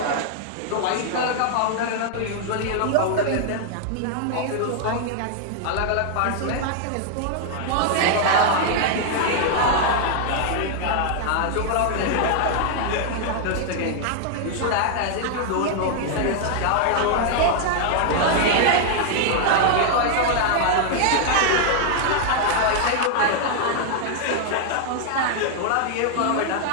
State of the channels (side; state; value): both; different; correlation 0.00